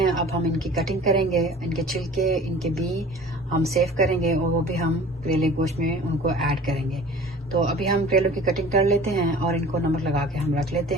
अब हम इनकी कटिंग करेंगे, इनके छिलके, इनके बी हम सेव करेंगे और वो भी हम करेले गोश्त में उनको ऐड करेंगे। तो अभी हम करेलों की कटिंग कर लेते हैं और इनको नमक लगा के हम रख लेते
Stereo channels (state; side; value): normal; both; correlation 0.44